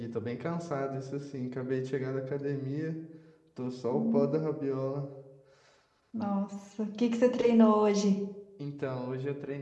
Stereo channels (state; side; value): identical; both; correlation 1.00